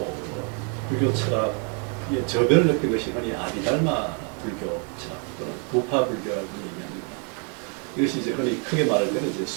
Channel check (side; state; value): left; quieter; 39.1 dB